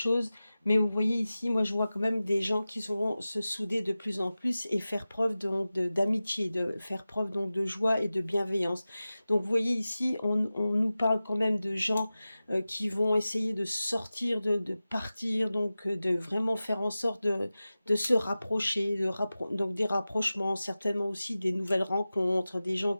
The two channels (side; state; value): both; inverted; correlation -0.96